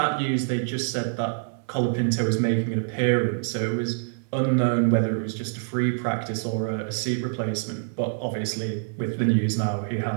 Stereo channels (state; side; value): silent; left; digital silence